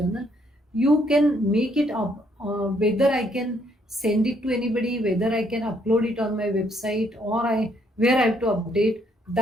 you can make it up. Whether I can send it to anybody, whether I can upload it on my website, or I where I have to update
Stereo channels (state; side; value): normal; both; correlation 0.69